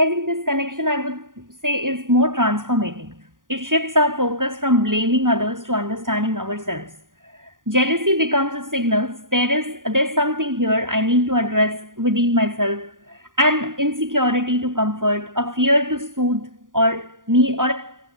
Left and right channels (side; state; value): left; late; 0.89 ms